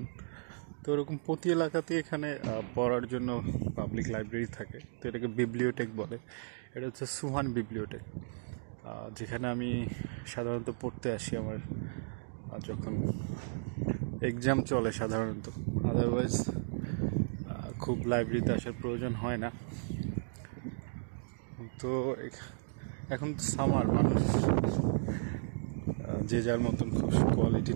তো এরকম প্রতি এলাকাতে এখানে পড়ার জন্য পাবলিক লাইব্রেরি থাকে, তো এটাকে বিবলিওটেক বলে। এটা হচ্ছে সুহান বিবলিওটেক, যেখানে আমি সাধারণত পড়তে আসি আমার যখন এক্সাম চলে সাধারণত। আদারওয়াইজ খুব লাইব্রেরিতে আসার প্রয়োজন হয় না। তো এখন তো সামার, মানুষ যে যার মতন খুব কোয়ালিটি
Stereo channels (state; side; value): silent; left; digital silence